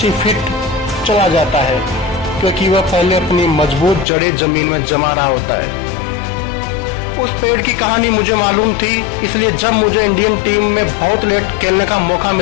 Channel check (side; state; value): right; drops out; at 4.0 s